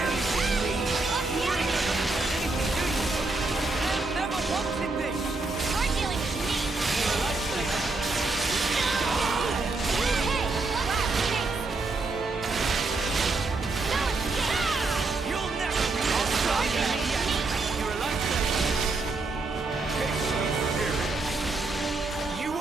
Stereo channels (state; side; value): quieter; left; 3.4 dB